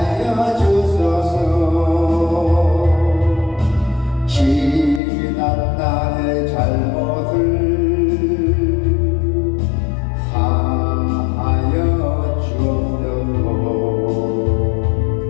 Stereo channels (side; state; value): right; drops out; at 5.0 s